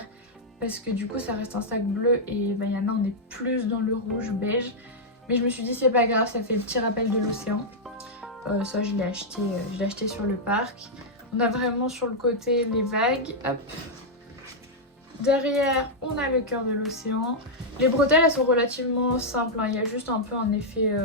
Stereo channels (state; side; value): normal; both; correlation -0.05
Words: Parce que du coup ça reste un sac bleu et Vaiana on est plus dans le rouge beige. Mais je me suis dit c'est pas grave, ça fait le petit rappel de l'océan. Ça je l'ai acheté sur le parc. On a vraiment sur le côté les vagues. Hop. Derrière, on a le cœur de l'océan. Les bretelles, elles sont relativement simples, hein. Il y a juste un peu un effet